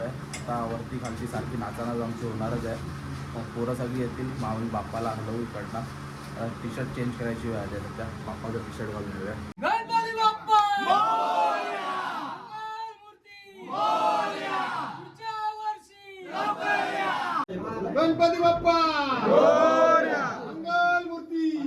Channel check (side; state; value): both; identical; correlation 1.00